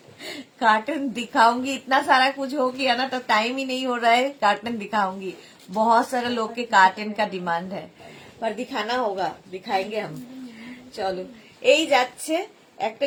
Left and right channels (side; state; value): both; identical; correlation 1.00